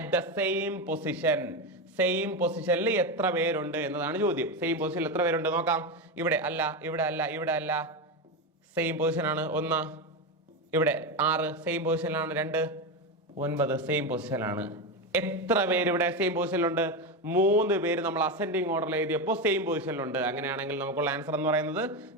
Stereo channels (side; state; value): both; normal; correlation 0.14